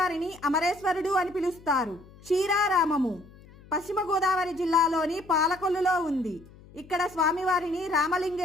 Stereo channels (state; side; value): noise; left; hum, 22 dB below the sound